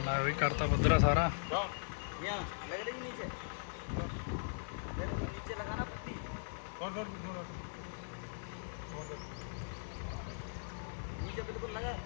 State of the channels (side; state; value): right; silent; 52 dB below the other